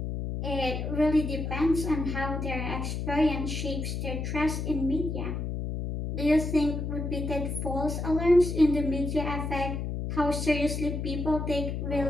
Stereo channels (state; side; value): noise; left; hum, 3 dB below the sound